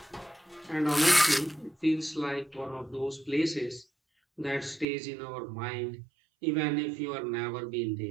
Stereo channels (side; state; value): left; drops out; at 4.9 s